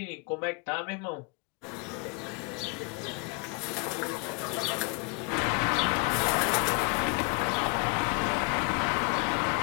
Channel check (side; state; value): right; quieter; 31.0 dB